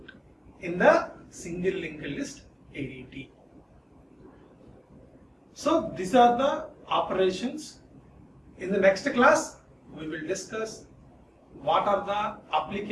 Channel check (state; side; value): identical; both; correlation 1.00